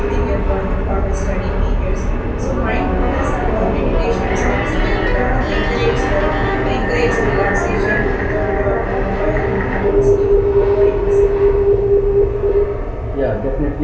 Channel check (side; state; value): both; identical; correlation 1.00